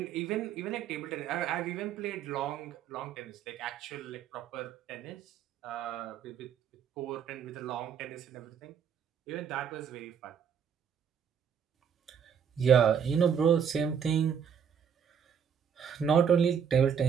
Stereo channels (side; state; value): left; quieter; 7.6 dB